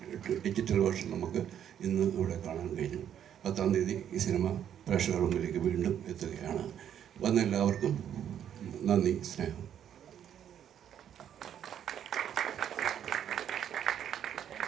ഡിജിറ്റൽ വേർഷൻ നമുക്ക് ഇന്ന് ഇവിടെ കാണാൻ കഴിഞ്ഞു. 10-ാം തീയതി ഈ സിനിമ പ്രേക്ഷകരുടെ മുമ്പിലേക്ക് വീണ്ടും എത്തുകയാണ്. വന്ന എല്ലാവർക്കും നന്ദി, സ്നേഹം.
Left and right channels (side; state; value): left; quieter; 9.6 dB